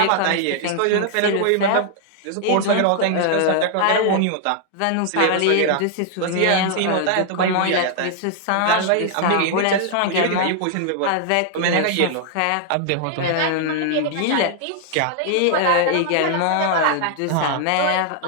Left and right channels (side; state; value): both; different; correlation 0.00